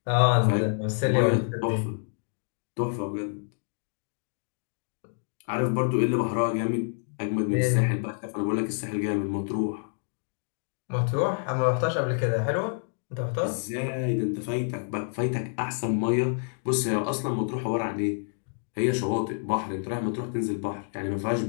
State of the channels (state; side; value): silent; right; digital silence